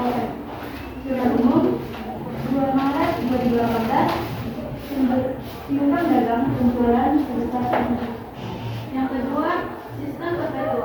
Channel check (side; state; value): both; identical; correlation 1.00